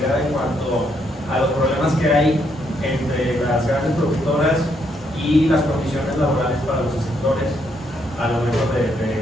en cuanto a los problemas que hay entre las grandes productoras y las condiciones laborales para los escritores a lo mejor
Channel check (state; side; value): normal; both; correlation 0.74